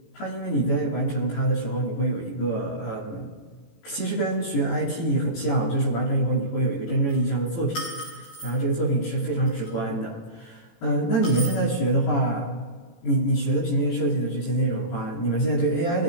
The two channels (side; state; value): right; late; 18 ms